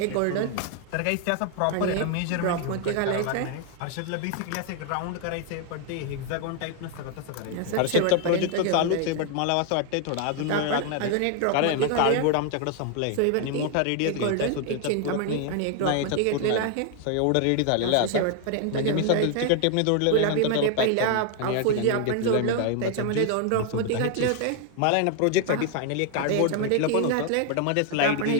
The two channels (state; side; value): different; both; correlation 0.00